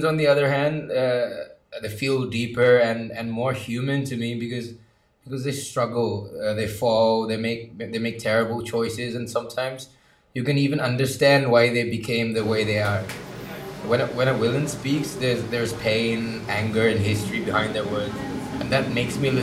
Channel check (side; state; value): both; identical; correlation 1.00